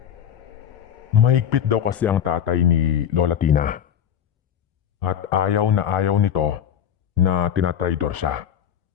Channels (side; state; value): right; quieter; 9.1 dB